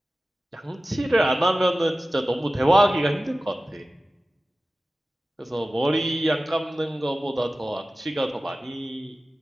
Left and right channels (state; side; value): normal; both; correlation 0.96